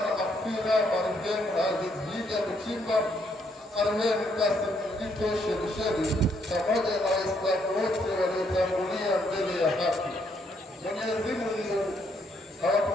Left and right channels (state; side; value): normal; both; correlation 0.72